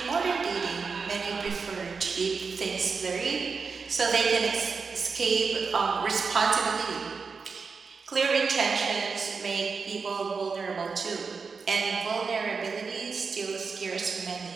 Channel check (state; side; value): quieter; left; 5.1 dB